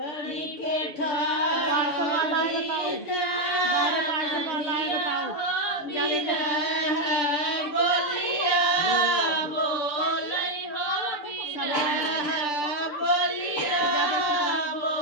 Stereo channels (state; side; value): late; right; 6.7 ms